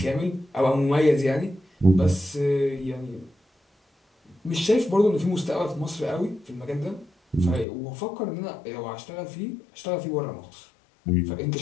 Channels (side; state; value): right; drops out; at 7.7 s